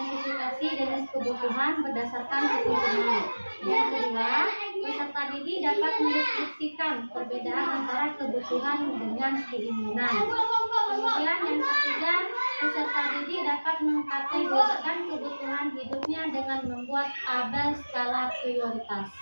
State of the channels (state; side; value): inverted; both; correlation -1.00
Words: jenis kebutuhan berdasarkan kebutuhan. Yang kedua, peserta didik dapat mendeskripsikan perbedaan antara kebutuhan dengan keinginan. Kemudian yang ketiga, peserta didik dapat mengkategorikan kebutuhan hidupnya dengan membuat tabel skala prioritas.